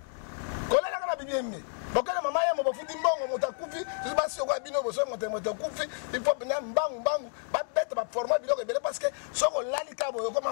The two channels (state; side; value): silent; right; digital silence